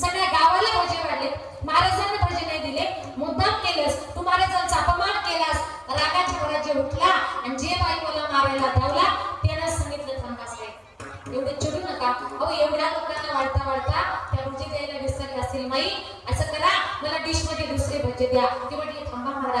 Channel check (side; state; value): both; identical; correlation 1.00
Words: सगळ्या गावाला भोजे वाढले, महाराजांना भोजे नाही दिले, मुद्दाम केलंस तू, महाराजांचा अपमान केलास. रागाच्या भरात जे उठला आणि जे बाई मला मारायला धावला त्यानं सांगितलं थांबास रे, एवढे चिडू नका. अहो एवढ्या लोकांना वाढता वाढता त्या भोजे द्यायला विसरले असेल माई, असं करा मला डिश मध्ये दुसरे भोजे द्या. ते म्हटले थांबा